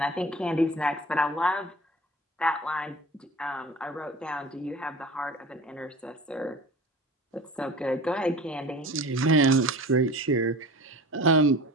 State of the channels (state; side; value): normal; both; correlation 0.39